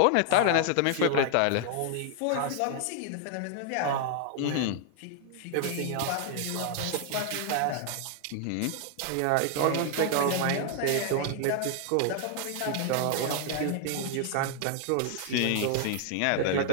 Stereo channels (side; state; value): both; different; correlation 0.00